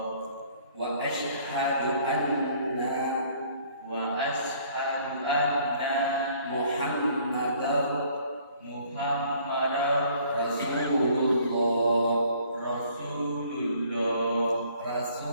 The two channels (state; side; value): inverted; both; correlation -0.58